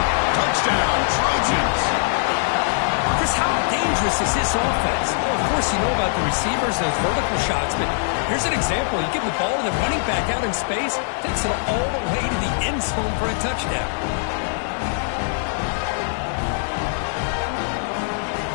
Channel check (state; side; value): silent; right; 64 dB below the other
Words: Touchdown, Trojans. Chris, how dangerous is this offense? Well, of course, you know about the receivers and those vertical shots, but here's an example. You give the ball to the running back out in space, takes it all the way to the end zone for a touchdown.